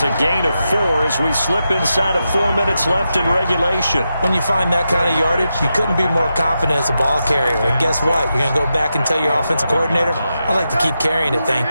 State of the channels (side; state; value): both; inverted; correlation -0.88